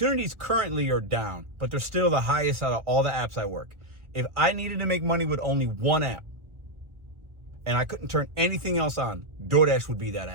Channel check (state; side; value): late; left; 1.3 ms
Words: currently are down, but they're still the highest out of all the apps I work. If I needed to make money with only one app, and I couldn't turn anything else on, DoorDash would be that